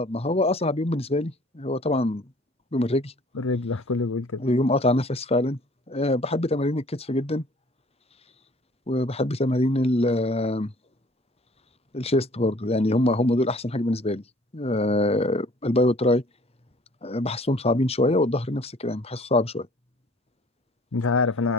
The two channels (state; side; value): normal; both; correlation 0.53